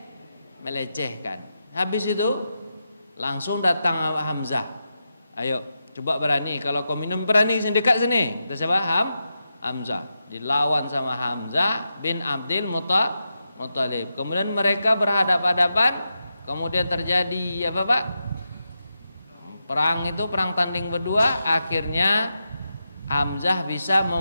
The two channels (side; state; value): both; inverted; correlation -0.88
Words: Melecehkan. Habis itu langsung datang Hamzah. Ayo, coba berani. Kalau kau minum berani sini, dekat sini. Kita siapa? Hamzah. Dilawan sama Hamzah bin Abdul Muthalib. Kemudian mereka berhadapan-hadapan. Kemudian terjadi apa Pak? Perang itu, perang tanding berdua. Akhirnya Hamzah bisa